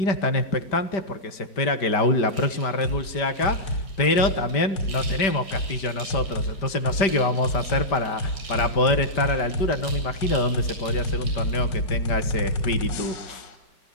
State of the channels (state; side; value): late; right; 5.1 ms